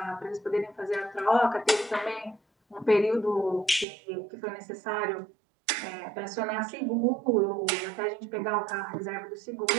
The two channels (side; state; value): left; drops out; at 3.9 s